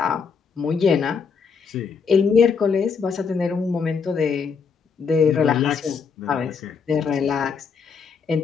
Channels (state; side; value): quieter; right; 5.8 dB